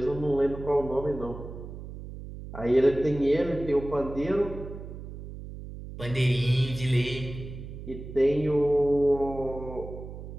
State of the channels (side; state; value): right; noise; hum, 11 dB below the sound